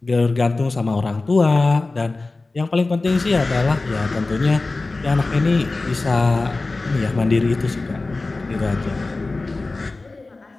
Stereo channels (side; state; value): right; quieter; 3.4 dB